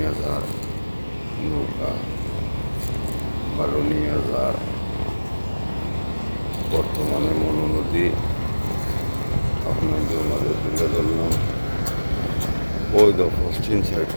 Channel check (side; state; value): both; inverted; correlation -1.00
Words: যার, নৌকা ভালো নিয়ে যার। বর্তমানে মনু নদী আপনাদের মাঝে তুলে ধরলাম। ওই তো পশ্চিম সাইড